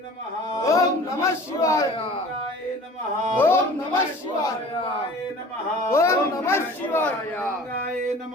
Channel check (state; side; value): normal; both; correlation 0.44